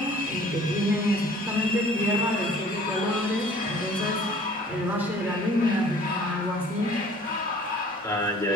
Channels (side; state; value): both; normal; correlation 0.52